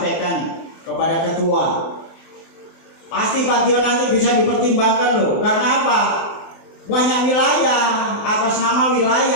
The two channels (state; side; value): late; right; 24 ms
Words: kepada ketua. Pasti Pak Gio nanti bisa dipertimbangkan loh. Karena apa? Banyak wilayah, atas nama